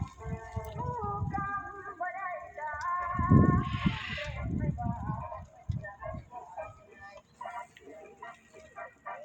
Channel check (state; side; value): identical; both; correlation 1.00